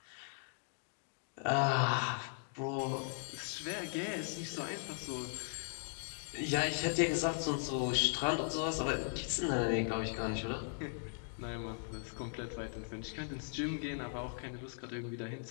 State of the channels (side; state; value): right; silent; digital silence